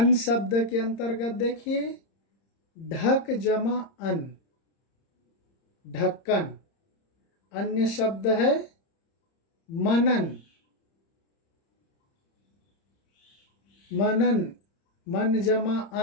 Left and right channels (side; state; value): right; late; 30 ms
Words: शब्द के अंतर्गत देखिए, ढक जमा अन, ढक्कन। अन्य शब्द है मनन, मनन, मन जमा